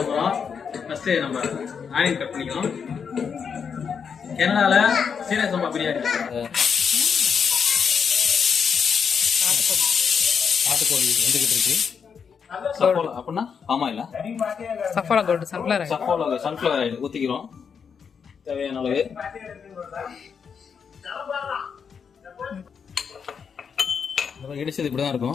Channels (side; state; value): right; quieter; 6.5 dB